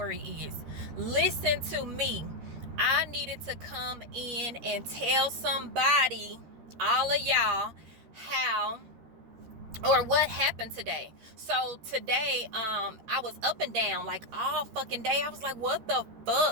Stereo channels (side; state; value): left; late; 13 ms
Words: is. Listen to me. I needed to come in and tell somebody, all of y'all, how or what happened today. So today, I was up and down like all fucking day. I was like, what the